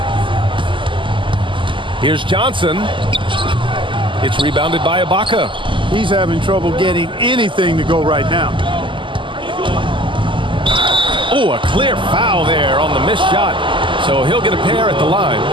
Here's Johnson. It's rebounded by Ibaka. He's having trouble getting anything to go right now. Oh, a clear foul there on the missed shot. So he'll get a pair at the line.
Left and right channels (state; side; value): late; left; 0.24 ms